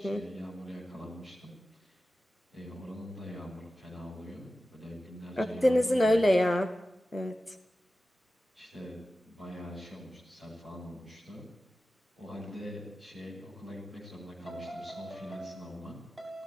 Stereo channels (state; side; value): normal; both; correlation 0.94